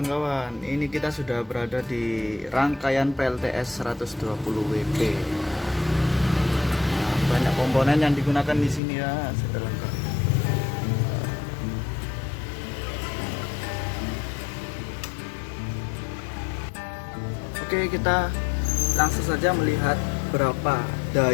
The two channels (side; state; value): right; drops out; at 8.8 s